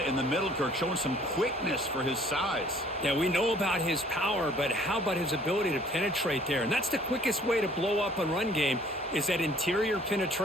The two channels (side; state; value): both; normal; correlation 0.56